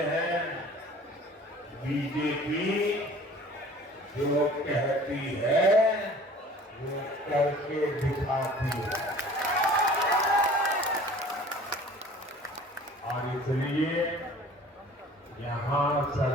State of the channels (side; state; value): both; normal; correlation 0.47